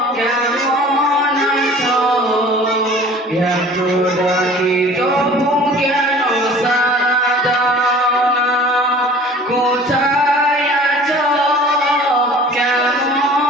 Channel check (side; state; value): both; normal; correlation 0.46